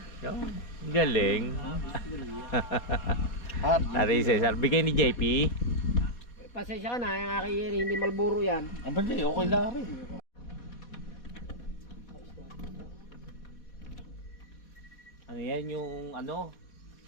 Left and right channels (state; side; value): late; right; 4.1 ms